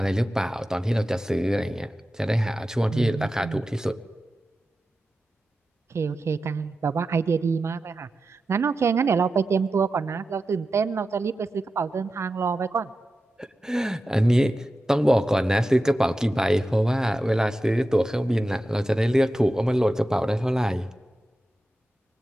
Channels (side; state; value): both; normal; correlation 0.92